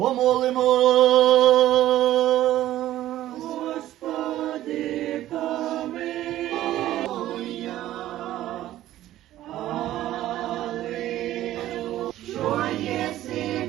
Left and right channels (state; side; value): quieter; left; 13.9 dB